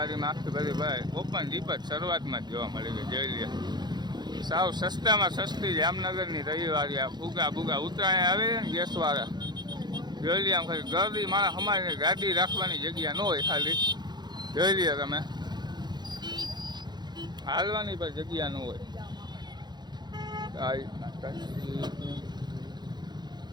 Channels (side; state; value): left; late; 0.21 ms